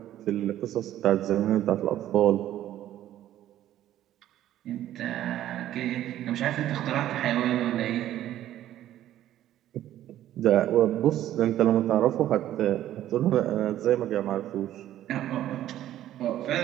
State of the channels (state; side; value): quieter; left; 12.7 dB